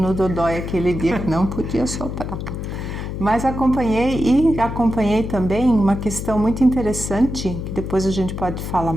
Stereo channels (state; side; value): noise; left; hum, 6 dB below the sound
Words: dodói aquele dia que não podia soprar. Mas acompanhei também uma questão muito interessante, que depois a gente pode falar